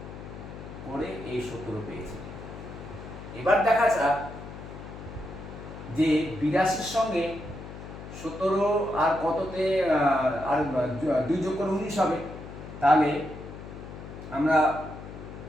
করে এই 17 পেয়েছি। এবার দেখা যাক যে 82-র সঙ্গে 17 আর কততে আর 2 যোগ করে 19 হবে। তাহলে আমরা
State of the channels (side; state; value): left; noise; hum, 12 dB below the sound